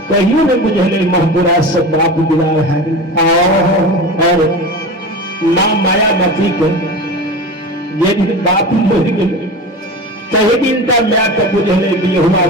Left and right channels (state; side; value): normal; both; correlation 0.30